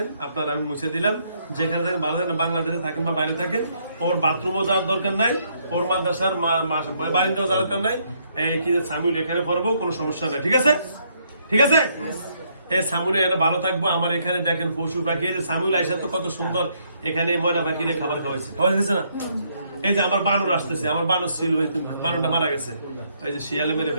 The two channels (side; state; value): both; inverted; correlation -0.71